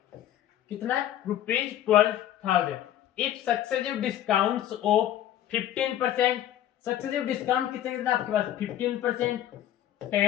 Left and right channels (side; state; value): right; quieter; 12.0 dB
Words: कितना rupees 12,000। If successive discounts of 15%, successive discount कितना आपके पास 15%,